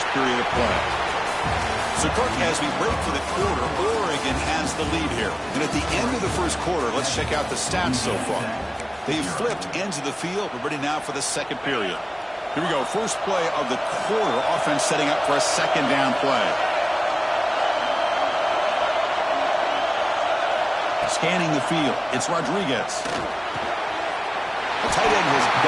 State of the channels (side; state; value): both; identical; correlation 1.00